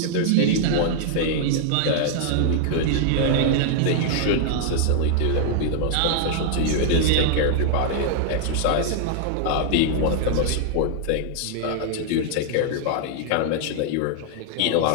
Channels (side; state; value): both; different; correlation -0.01